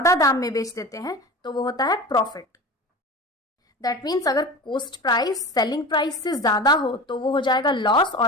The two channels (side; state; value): both; normal; correlation 0.33